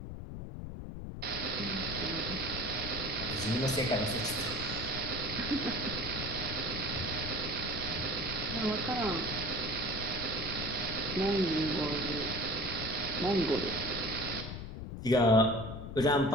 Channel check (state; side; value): noise; left; rumble, 8 dB below the sound